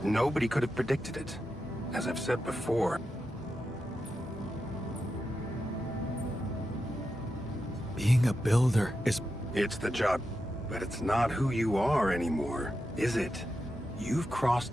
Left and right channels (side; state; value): both; normal; correlation 0.88